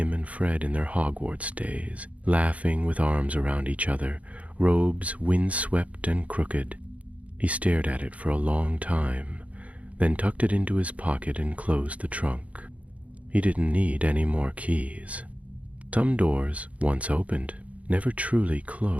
and Fred in their Hogwarts days, laughing with arms around each other, robes windswept and crooked. He stared at it for a long time, then tucked it into his pocket and closed the trunk. He didn't need any more keys. Some doors, once opened, never truly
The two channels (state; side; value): late; left; 0.067 ms